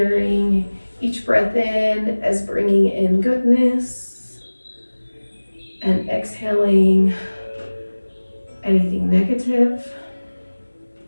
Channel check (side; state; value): both; inverted; correlation -1.00